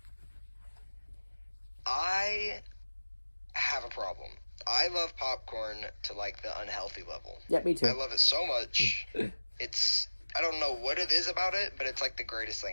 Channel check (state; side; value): inverted; both; correlation -1.00